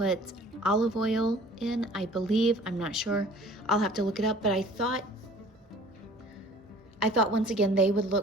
olive oil in, I believe. I'm not sure. I'll have to look it up, but I thought once again they would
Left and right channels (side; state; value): both; normal; correlation 0.49